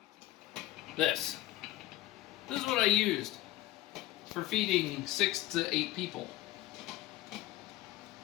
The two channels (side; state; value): right; quieter; 15.7 dB